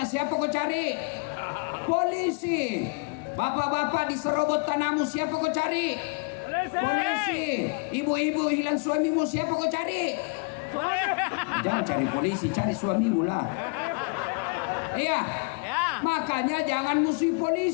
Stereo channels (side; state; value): right; quieter; 32.6 dB